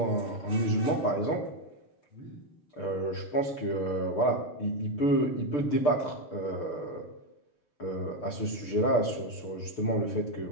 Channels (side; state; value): right; late; 6.7 ms